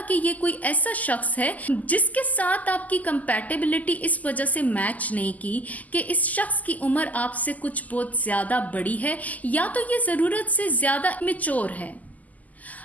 कि ये कोई ऐसा शख्स है जिसके साथ आपकी कंपैटिबिलिटी इस वजह से मैच नहीं की कि इस शख्स की उम्र आपसे कुछ बहुत ज़्यादा बड़ी है, या तो ये ज़रूरत से ज़्यादा मैच्योर है।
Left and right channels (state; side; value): late; right; 0.078 ms